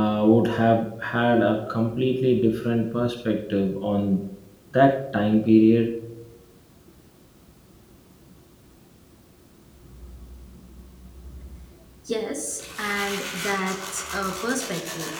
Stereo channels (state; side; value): identical; both; correlation 1.00